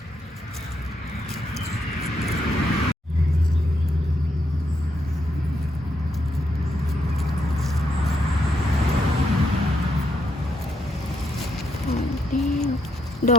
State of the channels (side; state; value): both; normal; correlation 0.78